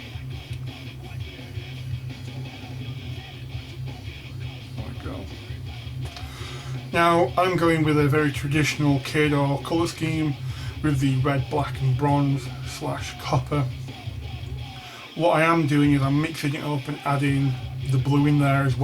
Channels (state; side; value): identical; both; correlation 1.00